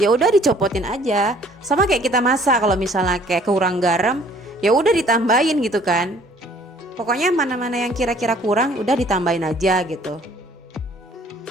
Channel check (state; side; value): normal; both; correlation 0.57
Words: udah dicopotin aja. Sama kayak kita masak, kalau misalnya kayak kurang garam, ya udah ditambahin gitu kan. Pokoknya mana-mana yang kira-kira kurang udah ditambahin aja gitu.